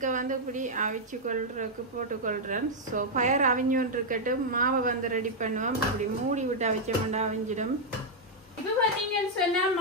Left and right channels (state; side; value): normal; both; correlation -0.03